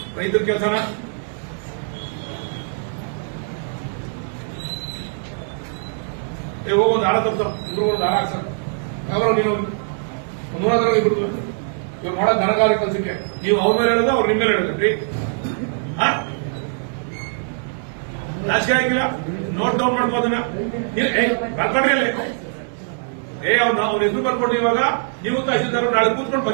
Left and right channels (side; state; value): left; silent; digital silence